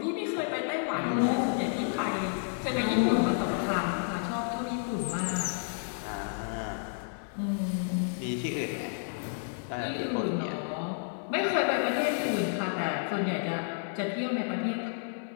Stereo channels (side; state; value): right; silent; 57 dB below the other